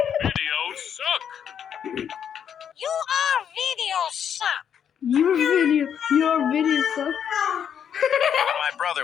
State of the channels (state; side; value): quieter; right; 8.4 dB